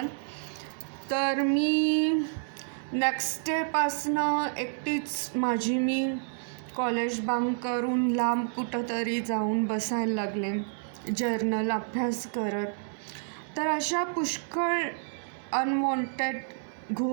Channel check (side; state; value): left; silent; digital silence